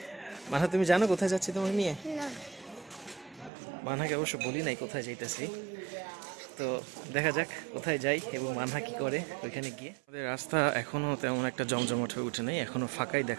মানহা, তুমি জানো কোথায় যাচ্ছি তোমাকে নিয়ে? মানহাকে অবশ্য বলি নাই কোথায় যাইতেছি। তো দেখা যাক কোথায় যাই এবং মানহা কি করে ওইখানে গিয়ে। আমাদের রাস্তা এখনও তেমন একটা জমজমাট হয়ে উঠে নেই, এখনও ফাঁকাই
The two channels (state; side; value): drops out; left; at 3.5 s